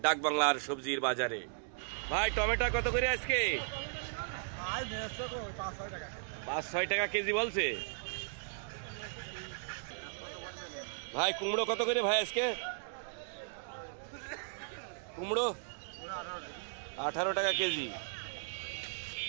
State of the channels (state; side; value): silent; left; digital silence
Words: ডাকবাংলার সবজির বাজারে। ভাই, টমেটো কত করে আজকে? 5-6 টাকা কেজি বলছে ভাই। কুমড়ো কত করে ভাই আজকে? কুমড়ো 18 টাকা কেজি।